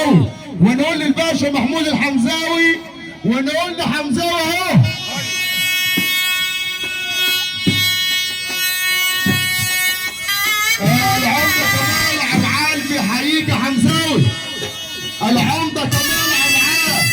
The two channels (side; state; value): both; identical; correlation 1.00